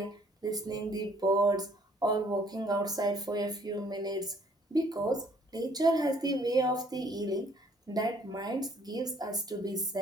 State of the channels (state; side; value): normal; both; correlation 0.61